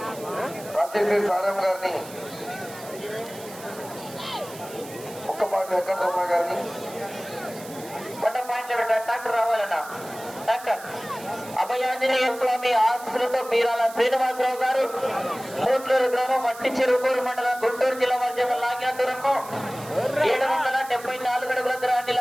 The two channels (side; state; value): right; noise; hiss, 17 dB below the sound